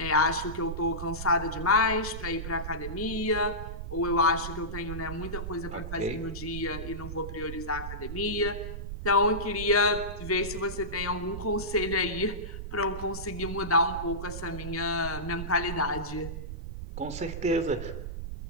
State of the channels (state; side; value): noise; right; rumble, 7 dB below the sound